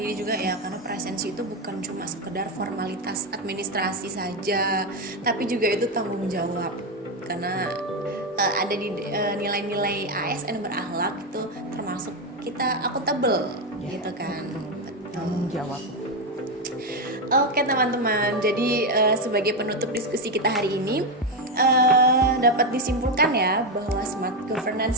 juga ya, karena presensi itu bukan cuma sekedar formalitas administrasi saja, tapi juga itu tanggung jawab. Karena ada di nilai-nilai ASN berakhlak itu termasuk kita akuntabel gitu kan. Tanggung jawab. Oke teman-teman, jadi sebagai penutup diskusi kita hari ini dapat disimpulkan ya bahwa smart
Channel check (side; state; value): both; normal; correlation 0.09